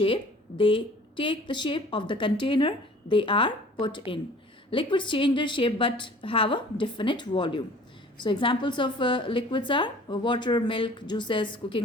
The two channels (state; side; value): normal; both; correlation 0.49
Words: They take the shape of the container they are put in. Liquids change their shape but have a definite volume. So examples of liquids are water, milk, juices,